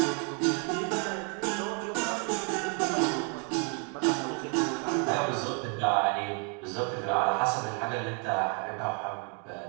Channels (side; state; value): left; quieter; 39.2 dB